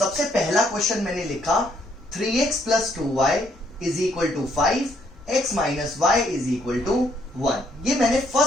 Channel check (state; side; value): normal; both; correlation 0.70